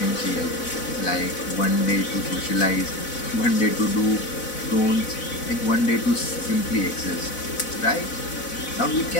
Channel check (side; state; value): right; late; 4.0 ms